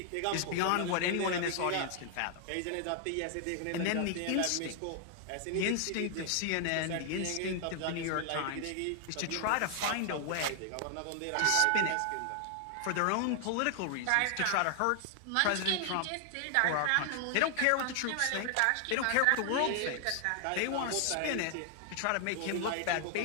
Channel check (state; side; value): different; both; correlation 0.00